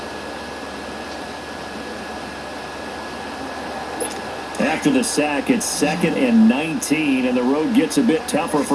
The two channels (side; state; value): both; identical; correlation 1.00